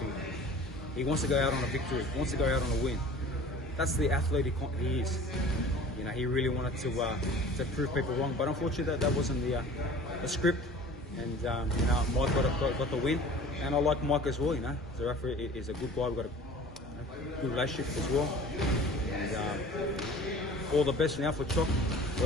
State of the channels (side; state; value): both; normal; correlation 0.44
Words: He wants to go out on a victory, he wants to go out on a win. That's the athlete he is. He really wanted to prove people wrong, but unfortunately that wasn't the script. And Mike got the win, and I like Mike as well. Zerafa is a good guy. We've got a good relationship as well. And all the best now for Chok,